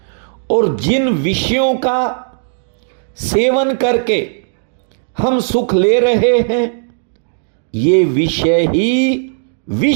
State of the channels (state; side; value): silent; left; digital silence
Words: और जिन विषयों का सेवन करके हम सुख ले रहे हैं, ये विषय ही